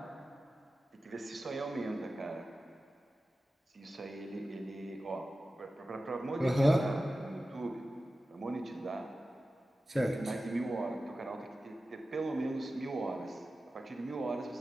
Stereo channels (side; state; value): both; normal; correlation 0.94